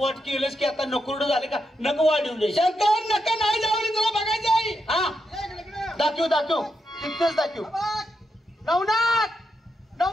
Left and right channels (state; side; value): normal; both; correlation 0.84